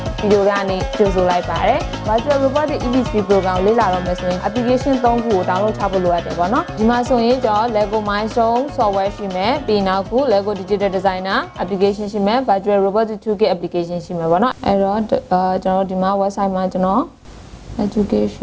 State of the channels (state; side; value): identical; both; correlation 1.00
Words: ဗီဒီယိုကနေကြိုဆိုလိုက်ပါတယ် Virtual Robotics EV3 program ကိုလေ့လာတော့မယ်ဆိုရင် application 3 ခုကို download ချဖို့လိုအပ်တယ်ပေါ့နော်ဒီမှာဆိုရင်ကျွန်တော် LEGO Mindstorms software ရှိမယ်ပြီးနောက်ခု LEGO Digital Designer application ရှိမယ် Virtual Robotics Toolkit application ရှိမယ်ပေါ့နော်အဲ့တော့ကျွန်တော်ဒီမှာ website မှာကျွန်တော်